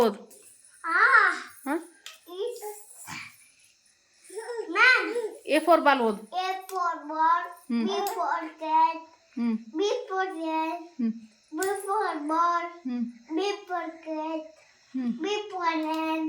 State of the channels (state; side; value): identical; both; correlation 1.00